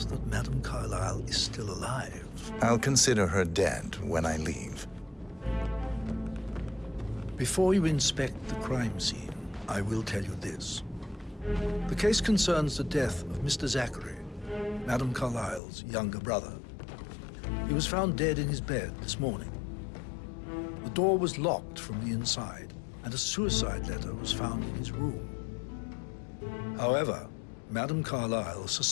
that Madame Carlyle is still alive. I'll consider her dead when I leave. Before you inspect the crime scene, I will tell you this. The case concerns the death of Mr. Zachary, Madame Carlyle's younger brother. He was found dead in his bed this morning. The door was locked from the inside, and a suicide letter was found in his room. However, Madame Carlyle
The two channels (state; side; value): drops out; right; at 15.6 s